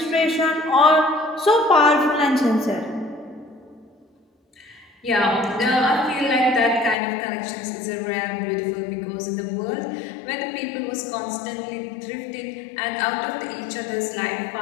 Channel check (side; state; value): right; drops out; at 7.0 s